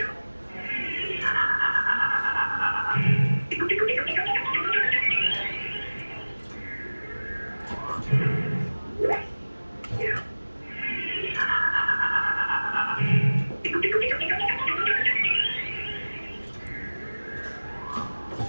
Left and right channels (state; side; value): inverted; both; correlation -1.00